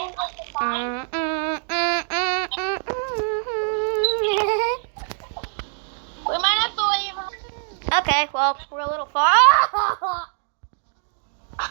the sign? We might have to leave. Okay, well, we're a little far.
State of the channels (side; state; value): left; silent; digital silence